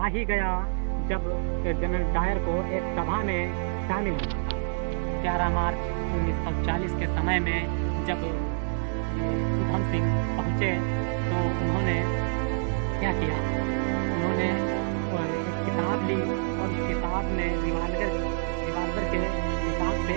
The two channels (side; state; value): left; silent; digital silence